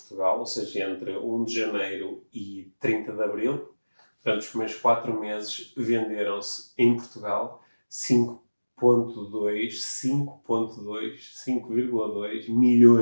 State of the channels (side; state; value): both; inverted; correlation -1.00